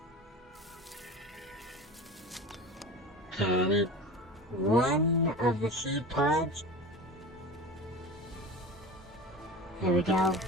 Okay, I need 1 of the seed pods. There we go.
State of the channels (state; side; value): normal; both; correlation 0.32